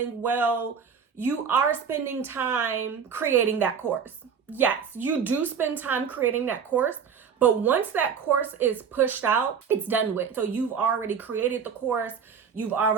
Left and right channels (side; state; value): left; quieter; 6.7 dB